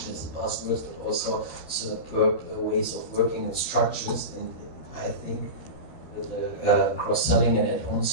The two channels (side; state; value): right; late; 13 ms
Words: as a buzzword, but also superb ways of working and structures. And I think with the cross-selling and add-on